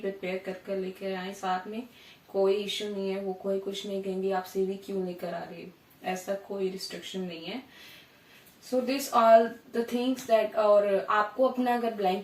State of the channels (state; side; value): identical; both; correlation 1.00